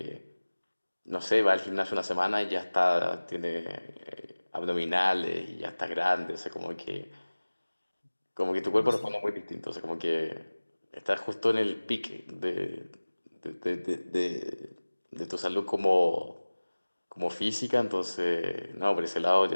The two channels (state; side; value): inverted; both; correlation -1.00